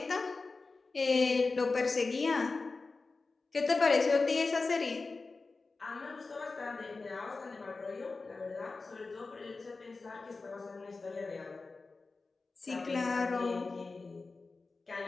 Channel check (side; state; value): right; quieter; 3.9 dB